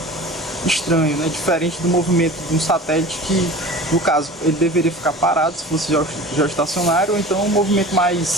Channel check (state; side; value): normal; both; correlation 0.38